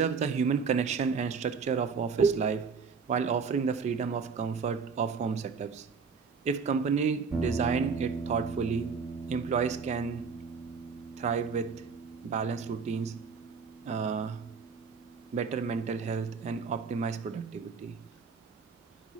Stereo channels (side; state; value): left; quieter; 5.4 dB